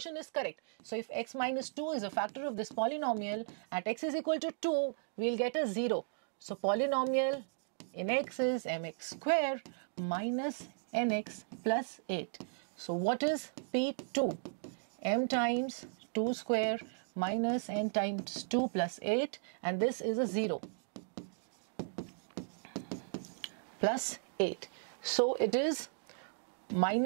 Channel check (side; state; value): left; silent; digital silence